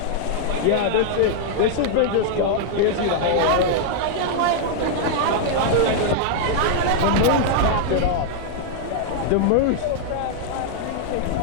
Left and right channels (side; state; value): both; different; correlation -0.01